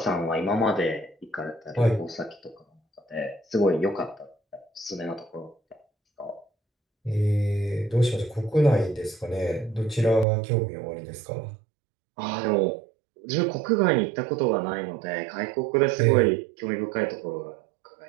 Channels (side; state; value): left; drops out; at 10.2 s